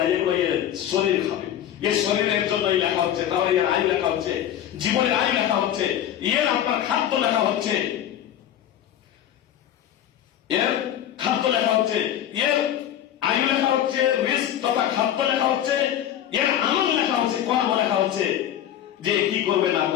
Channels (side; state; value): right; quieter; 10.9 dB